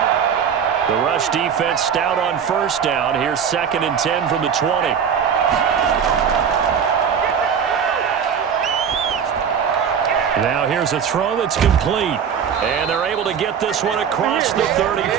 The rush defense stout on first down. Here's 2nd and 10 from the 20. Now here's a throw that's complete. And they're able to get this one across the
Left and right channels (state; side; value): quieter; left; 7.5 dB